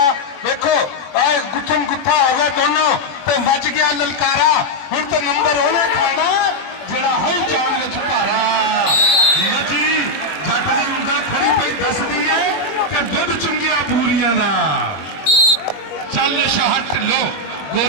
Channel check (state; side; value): late; right; 21 ms